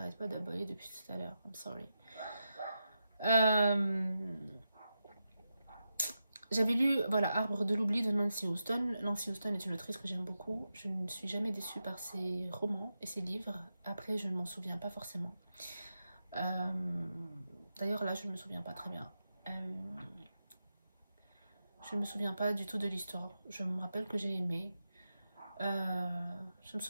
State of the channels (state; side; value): inverted; both; correlation -0.88